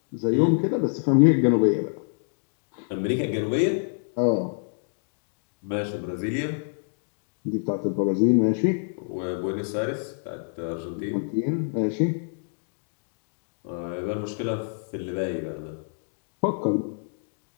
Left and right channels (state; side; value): silent; right; digital silence